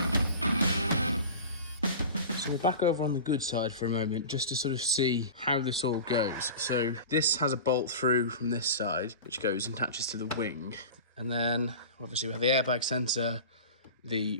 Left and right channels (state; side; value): inverted; both; correlation -0.33